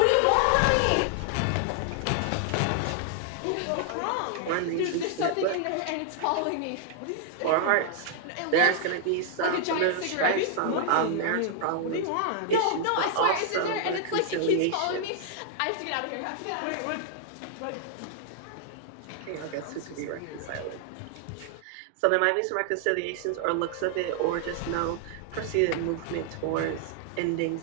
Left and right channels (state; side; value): different; both; correlation 0.00